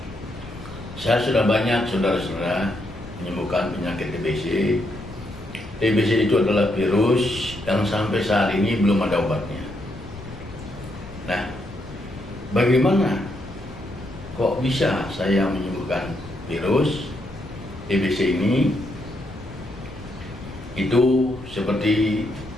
Saya sudah banyak saudara-saudara menyembuhkan penyakit TBC. TBC itu adalah virus yang sampai saat ini belum ada obatnya. Nah, bagaimana kok bisa saya menyembuhkan virus TBC ini? Itu seperti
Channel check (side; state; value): left; noise; rumble, 16 dB below the sound